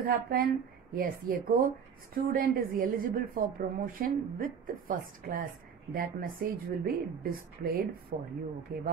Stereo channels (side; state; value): left; quieter; 7.0 dB